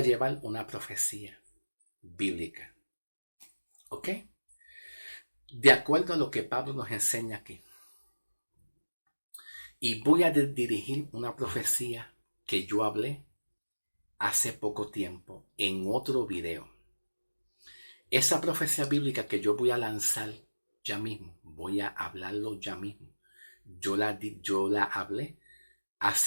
bíblica. ¿Ok? De acuerdo a lo que Pablo nos enseña aquí. Y voy a dirigir una profecía que yo hablé hace poco tiempo en otro video. Esa profecía bíblica que yo voy a lanzar ya mismo, voy a hablarlo ya mismo. Yo la hablé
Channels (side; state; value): both; inverted; correlation -1.00